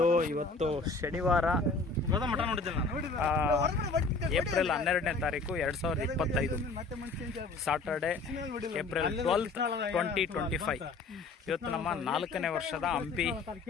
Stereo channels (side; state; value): right; quieter; 3.9 dB